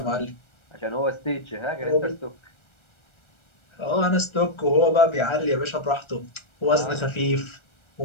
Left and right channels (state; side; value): late; right; 1.3 ms